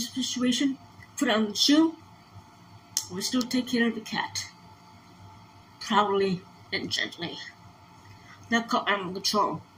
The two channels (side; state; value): both; identical; correlation 1.00